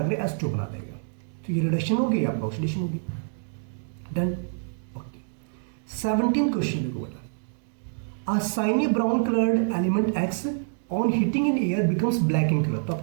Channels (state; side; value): silent; left; digital silence